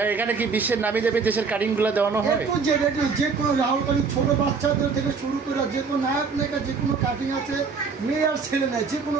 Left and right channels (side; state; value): left; quieter; 5.1 dB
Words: এখানে কি বিশ্বের নামি দেবে দেশের কাটিংগুলো দেওয়ানো হয়? এরপর যে কোনো রাহুল কাটিং, ছোট বাচ্চাদের থেকে শুরু করে যে কোনো নায়ক নায়িকা যে কোনো কাটিং আছে, মেয়ে আর ছেলে নেয়, যে কোনো